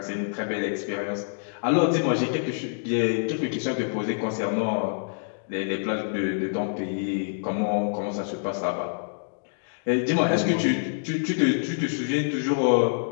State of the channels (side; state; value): right; silent; digital silence